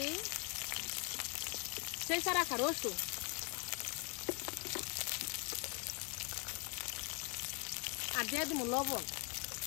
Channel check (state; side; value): quieter; right; 34.5 dB